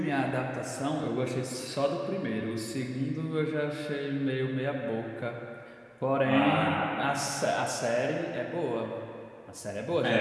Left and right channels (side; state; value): both; identical; correlation 1.00